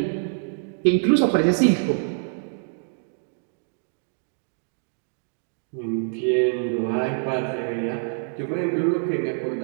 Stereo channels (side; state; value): left; silent; digital silence